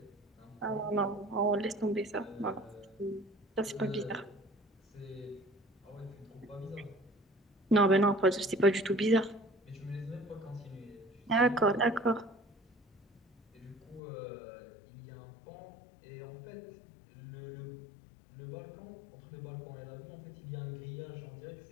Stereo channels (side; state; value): right; drops out; at 14.0 s